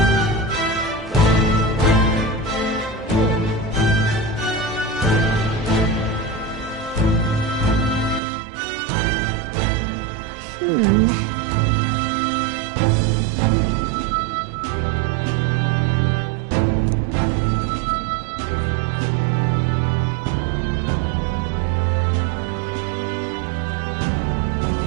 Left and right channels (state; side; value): drops out; left; at 8.2 s